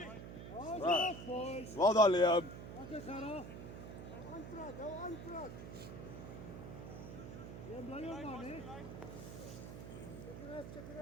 Goed, boys. Wel dan, Liam. Lekker Gerard. Hou aanpraat. Jy bly hier man, hè? Check it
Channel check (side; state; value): right; noise; hum, 10 dB below the sound